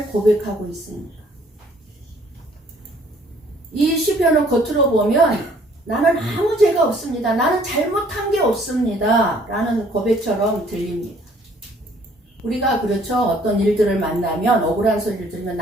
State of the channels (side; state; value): both; normal; correlation 0.59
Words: 고백하고 있습니까? 이 시편을 겉으로 보면 나는 아무 죄가 없습니다. 나는 잘못한 게 없습니다. 라는 고백처럼 들립니다. 우리가 그렇죠. 어떤 일들을 만나면 억울한 소리를 들으면